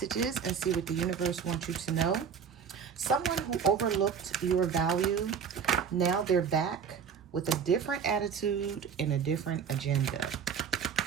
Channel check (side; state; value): left; quieter; 7.0 dB